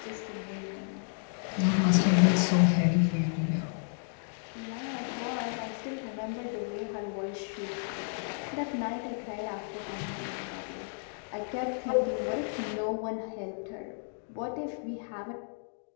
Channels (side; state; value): right; silent; digital silence